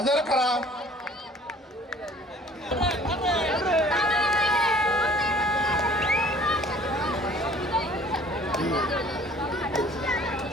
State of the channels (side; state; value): both; normal; correlation 0.53